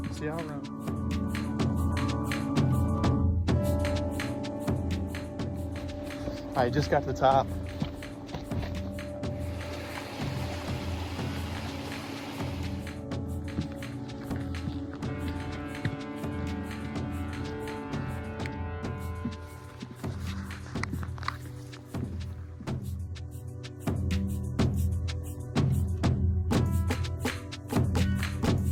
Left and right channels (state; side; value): identical; both; correlation 1.00